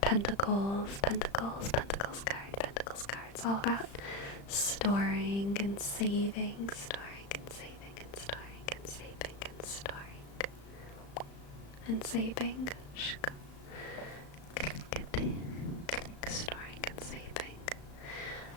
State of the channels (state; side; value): late; right; 35 ms